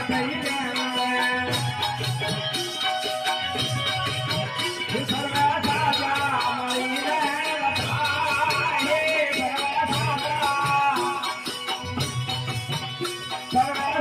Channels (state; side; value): identical; both; correlation 1.00